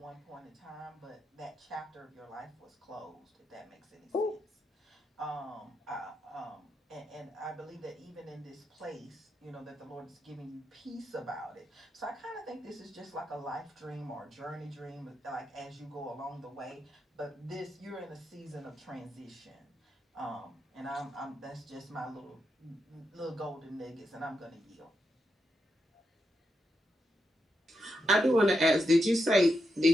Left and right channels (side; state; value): both; normal; correlation 0.84